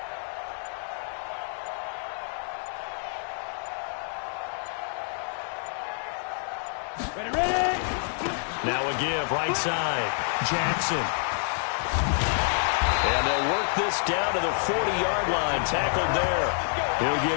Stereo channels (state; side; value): silent; right; digital silence